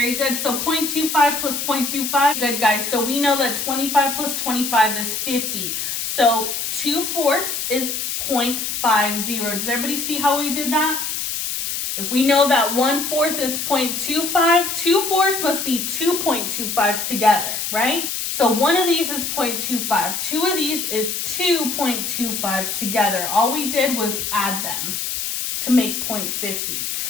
good. So 0.25 plus 0.25, good guys. So we know that 25 plus 25 is 50. So 2/4 is 0.50. Does everybody see how we did that? If we know that 1/4 is 0.25, 2/4 must be 2.25s together, right? So one of these is 0.25. Two of these is 2.25s together. All we did was add them to make 0.50.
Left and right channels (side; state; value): left; noise; hiss, 3 dB below the sound